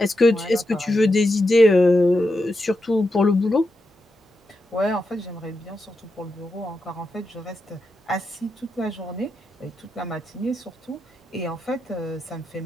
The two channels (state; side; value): normal; both; correlation 0.86